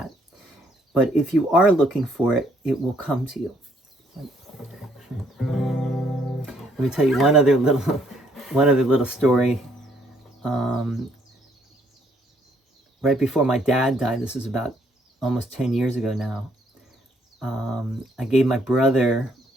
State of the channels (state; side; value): normal; both; correlation 0.68